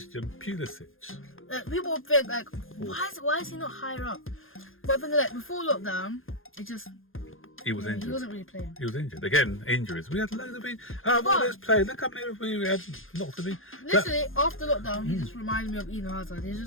Pulisic. People think like, why is he not higher up? But I think like before lockdown, he was injured. He wasn't really playing. He was injured. Again, injuries. We had loads of others played. Look how many we had. Lots of it. Literally, after lockdown, he just reminded me of Eden Hazard. He's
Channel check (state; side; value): late; right; 0.59 ms